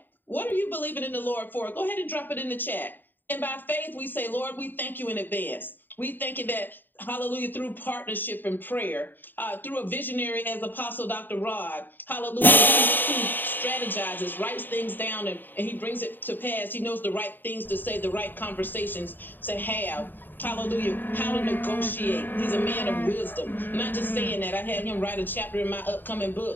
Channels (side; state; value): right; late; 0.092 ms